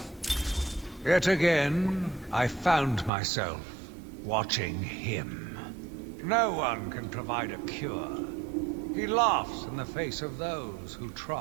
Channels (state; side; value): drops out; left; at 3.1 s